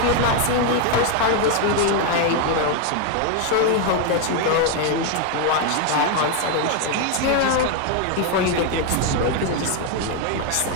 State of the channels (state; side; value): different; both; correlation 0.01